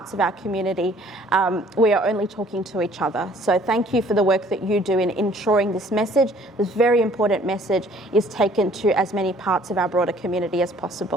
of our community, we are only talking to each other. So thank you for the work that you do in ensuring this message, this very important message, is taken to as many parts of our broader community as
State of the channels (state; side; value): normal; both; correlation 0.56